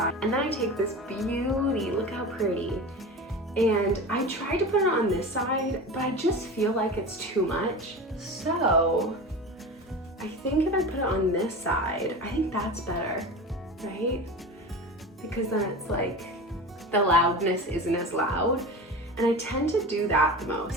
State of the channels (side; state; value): both; normal; correlation 0.30